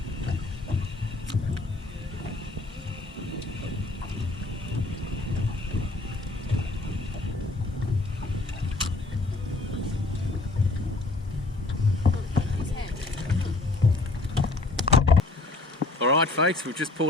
Alright folks, we've just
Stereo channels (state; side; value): quieter; right; 3.1 dB